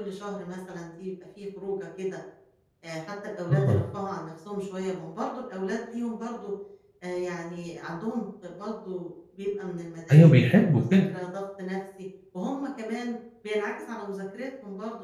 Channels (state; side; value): identical; both; correlation 1.00